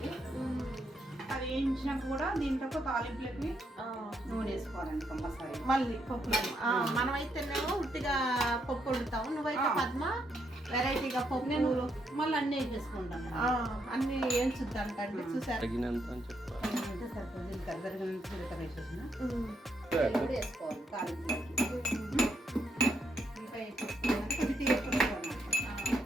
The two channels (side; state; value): both; normal; correlation 0.77